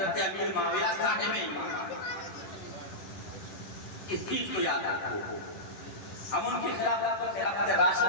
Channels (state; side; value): late; right; 10 ms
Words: امیر معاویہ صاحب ایمان ہے۔ اس چیز کو یاد رکھو، ہم ان کی خلافت کو خلافت